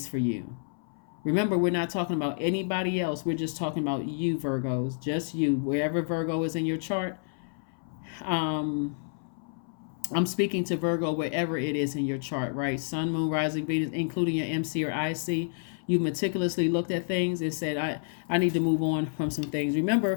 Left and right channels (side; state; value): right; silent; 58 dB below the other